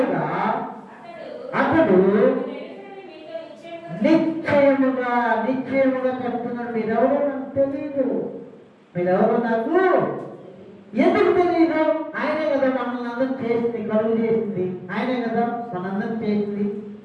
అతడు నిశ్చయముగా చెప్తున్నాడు, మీరెవరో నాకు తెలియదు, మీరెవరో నాకు ఎందుకు తెలియదు? ఆయనే కదా మనల్ని అందరం చేసింది, కలుగు చేసింది ఆయనే కదా మనందరం చేసింది.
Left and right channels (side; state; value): both; identical; correlation 1.00